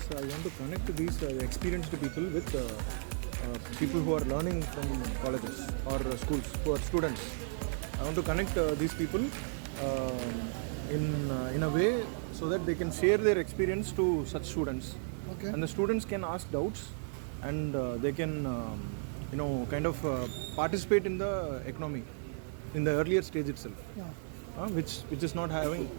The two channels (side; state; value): left; silent; digital silence